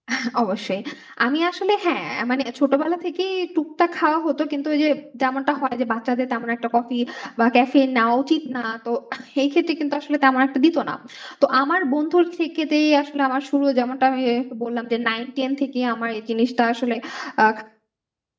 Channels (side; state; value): both; identical; correlation 1.00